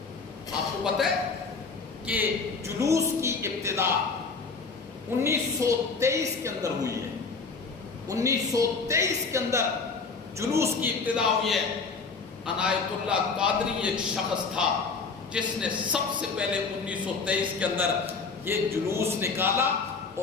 آپ کو پتہ ہے کہ جلوس کی ابتدا 1923 کے اندر ہوئی ہے۔ 1923 کے اندر جلوس کی ابتدا ہوئی ہے۔ عنایت اللہ قادری ایک شخص تھا جس نے سب سے پہلے 1923 کے اندر یہ جلوس نکالا،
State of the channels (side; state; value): right; quieter; 4.6 dB